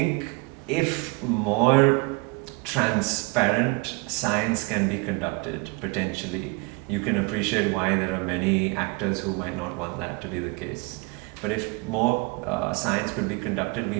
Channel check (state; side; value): quieter; left; 28.5 dB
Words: if more transparent science can be conducted, potentially, you can appreciate why there are many actors who might not want that to be the case. But if more science could be conducted, we